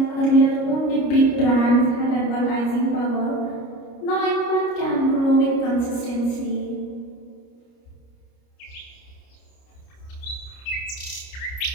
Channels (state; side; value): late; right; 29 ms